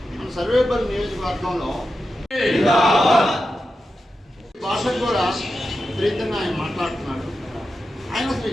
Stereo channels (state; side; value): normal; both; correlation 0.90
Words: మన సర్వేపల్లి నియోజకవర్గంలో భాషకు కూడా విపరీతంగా ఆయన మాట్లాడుతున్నాడు. ఆయన అసలు